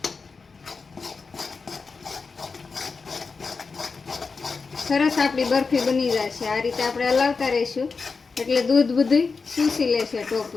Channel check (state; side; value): quieter; right; 4.6 dB